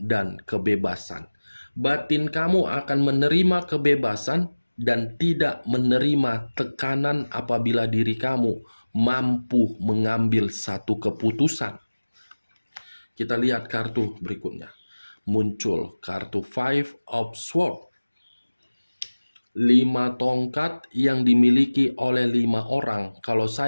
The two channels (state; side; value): inverted; both; correlation -1.00